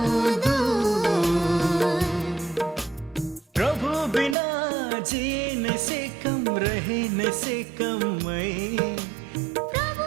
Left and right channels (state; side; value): drops out; left; at 4.4 s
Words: दूर प्रभु बिना जीने से कम रहने से कम मैं